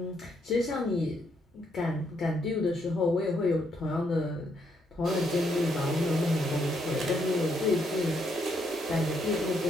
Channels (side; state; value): both; normal; correlation 0.75